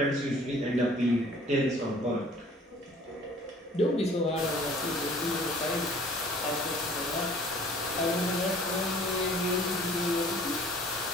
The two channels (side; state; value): both; normal; correlation 0.52